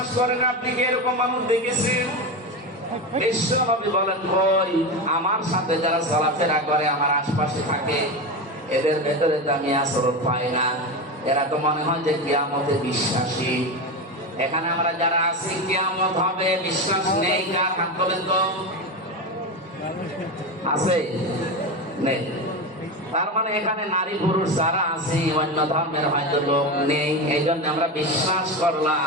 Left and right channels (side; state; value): both; normal; correlation 0.19